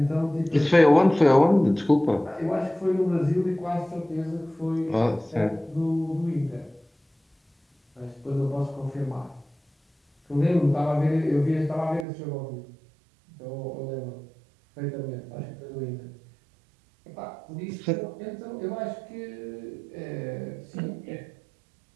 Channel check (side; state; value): left; drops out; at 12.1 s